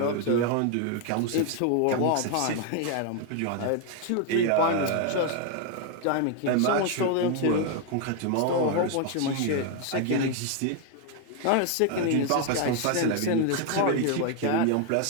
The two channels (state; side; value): different; both; correlation 0.01